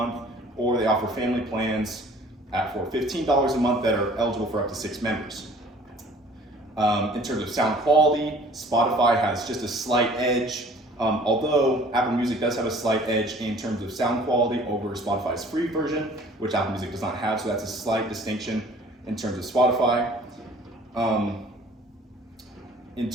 or they offer family plans for $15 a month that are eligible for up to 6 members. In terms of sound quality, Spotify has just a slight edge, although Apple Music does have a slight edge in terms of sound quality over Spotify's free version, which Apple Music does not have, so that's a slight distinction in terms of Spotify. In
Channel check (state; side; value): normal; both; correlation 0.51